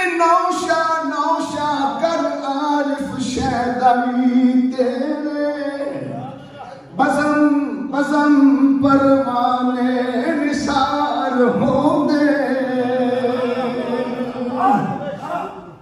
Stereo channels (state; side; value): identical; both; correlation 1.00